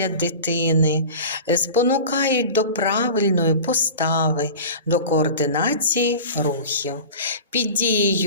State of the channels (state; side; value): inverted; both; correlation -0.35